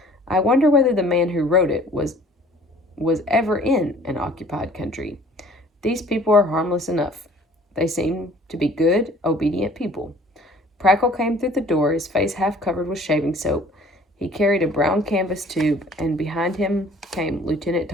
"I wonder whether the man who wrote it was ever in an occupied country. These people are harmless enough. They seem to be good, obedient people." Prackle came through the door, his face half covered with shaving soap. He carried a brown canvas tube, and behind him came Lieutenant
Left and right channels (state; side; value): normal; both; correlation 0.52